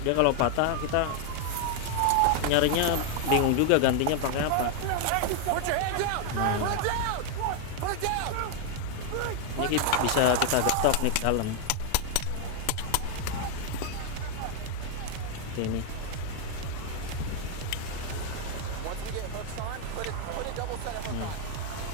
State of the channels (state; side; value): different; both; correlation 0.00